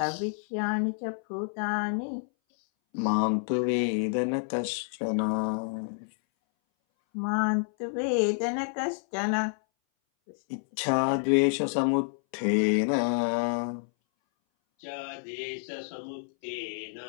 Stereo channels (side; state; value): right; silent; 59 dB below the other